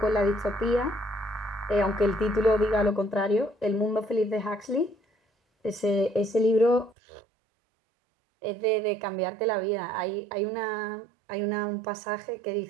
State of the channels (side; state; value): left; drops out; at 7.0 s